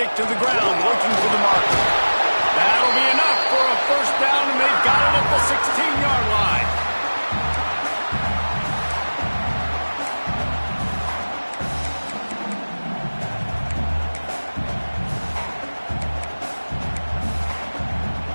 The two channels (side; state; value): both; inverted; correlation -1.00